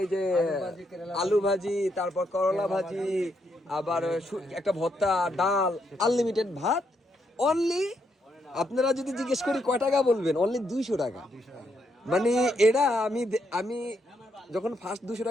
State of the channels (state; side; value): normal; both; correlation 0.78